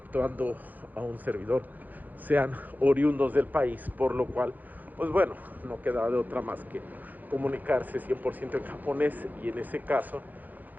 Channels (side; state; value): left; late; 0.083 ms